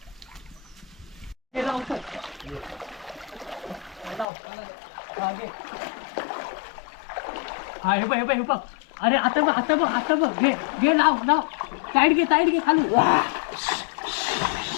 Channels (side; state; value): right; drops out; at 4.2 s